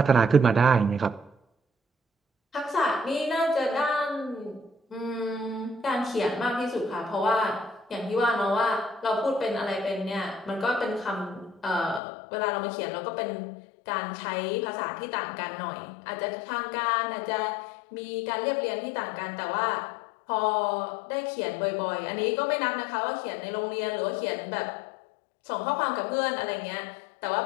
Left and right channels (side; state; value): right; drops out; at 12.0 s